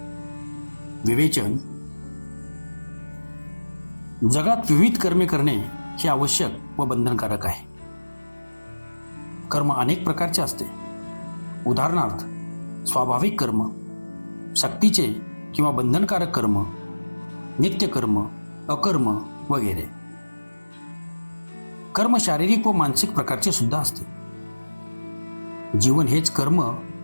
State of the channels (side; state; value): both; inverted; correlation -1.00